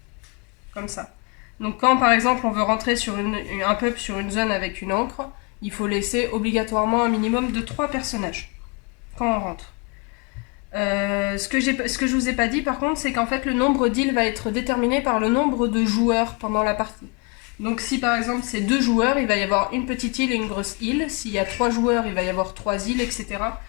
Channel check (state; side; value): quieter; right; 31.7 dB